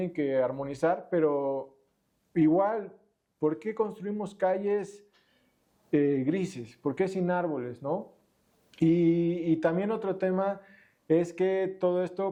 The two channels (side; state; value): both; identical; correlation 1.00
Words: que armonizar, pero igual, ¿por qué construimos calles grises? ¿Por qué sin árboles, no? Y también otro tema es que todo